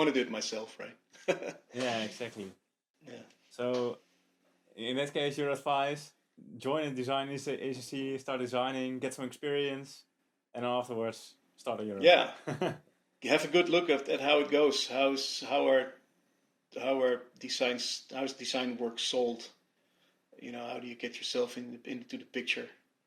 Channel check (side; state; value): both; identical; correlation 1.00